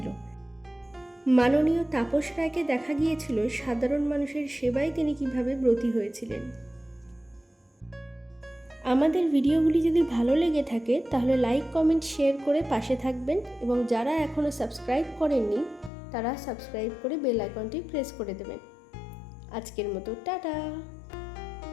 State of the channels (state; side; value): drops out; right; at 15.9 s